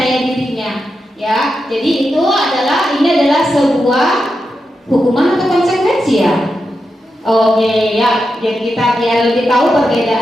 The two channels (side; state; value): both; normal; correlation 0.88